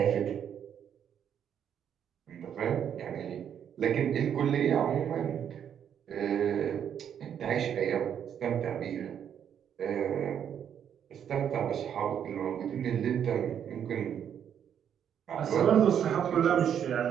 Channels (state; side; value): quieter; left; 8.8 dB